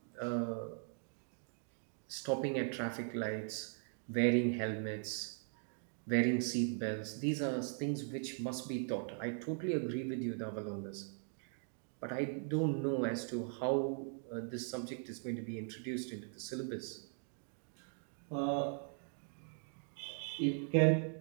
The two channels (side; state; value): left; silent; 51 dB below the other